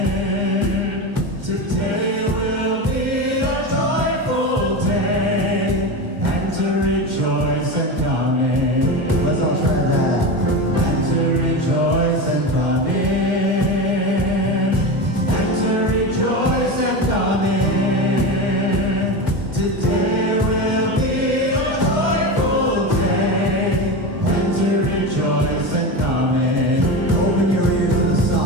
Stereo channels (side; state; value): left; late; 2.1 ms